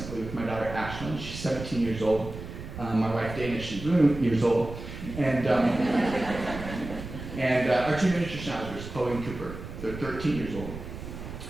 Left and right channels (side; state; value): right; noise; rumble, 10 dB below the sound